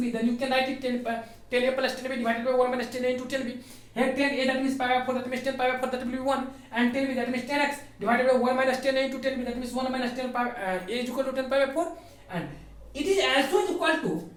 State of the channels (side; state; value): both; identical; correlation 1.00